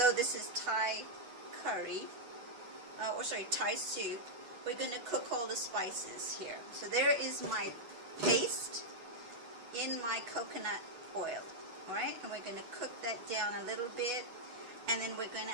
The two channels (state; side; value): late; left; 8.1 ms